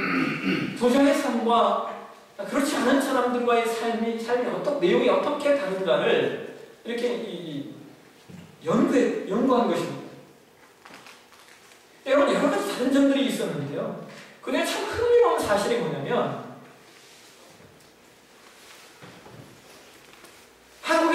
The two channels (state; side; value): identical; both; correlation 1.00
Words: 부자의 삶과 그렇지 않은 사람들과의 삶이 내용이 어떻게 다른가를 이렇게 연구한 것입니다. 여러분 여러 가지 다른 점들이 있었는데요. 근데 참 흥미로운 사실이 뭐냐면